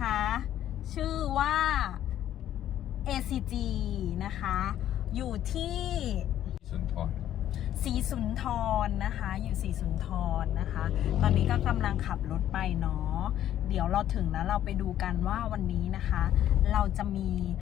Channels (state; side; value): quieter; right; 11.6 dB